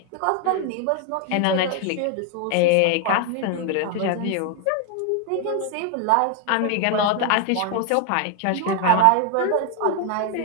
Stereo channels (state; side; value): different; both; correlation 0.01